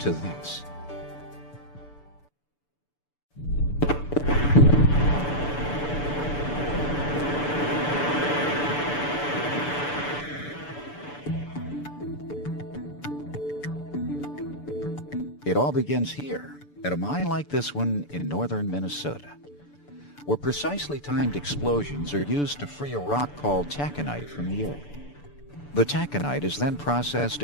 this? It all begins here, at a mine like this one in northern Minnesota, where precisely timed explosions are used to free a rock called taconite from the earth. The taconite is then processed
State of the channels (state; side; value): late; right; 6.9 ms